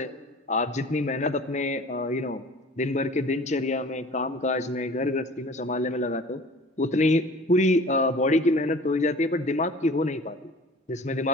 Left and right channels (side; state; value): both; normal; correlation 0.45